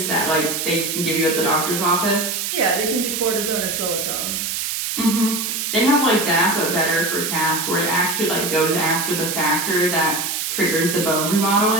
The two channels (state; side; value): noise; right; hiss, 2 dB below the sound